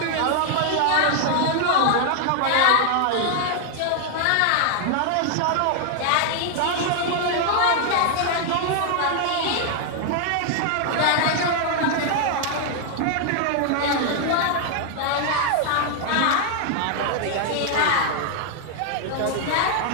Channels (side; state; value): both; different; correlation 0.00